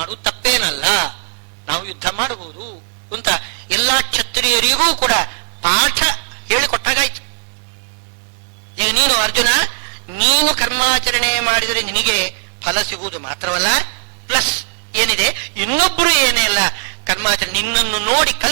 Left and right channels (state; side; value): silent; left; 65 dB below the other